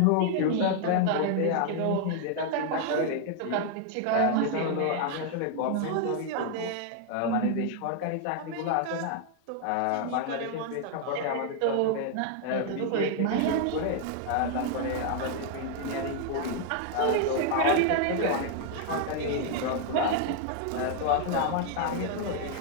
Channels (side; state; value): both; different; correlation 0.00